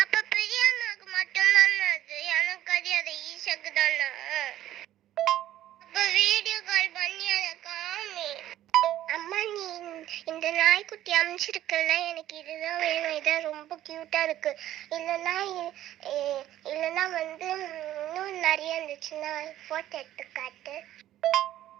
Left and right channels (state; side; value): quieter; left; 13.1 dB